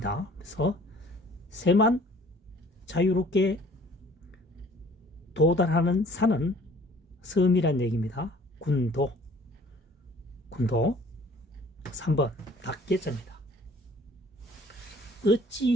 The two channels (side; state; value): both; normal; correlation 0.53